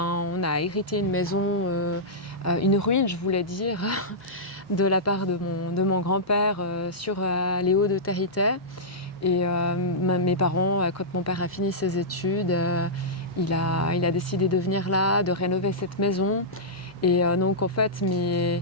a hérité une maison, une ruine, je voulais dire, de la part de mon grand-père sur les hauts de Territé. Et mes parents, quand mon père a fini ses études, il a décidé de venir là, de rénover cette maison. Et donc en fait,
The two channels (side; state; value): both; normal; correlation -0.12